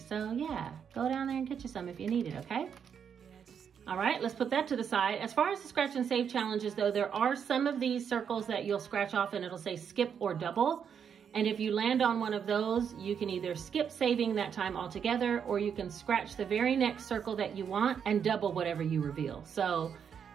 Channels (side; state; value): left; quieter; 7.5 dB